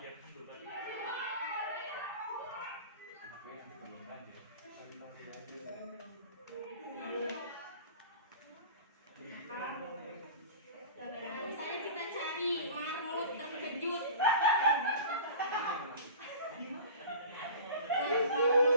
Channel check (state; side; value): inverted; both; correlation -0.38